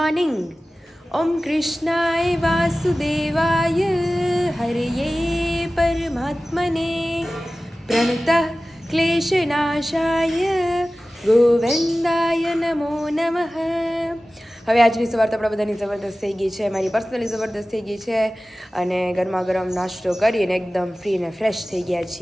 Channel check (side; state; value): both; normal; correlation 0.96